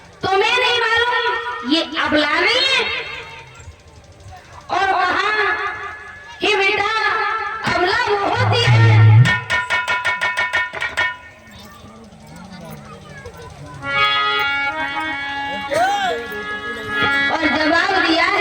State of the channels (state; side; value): identical; both; correlation 1.00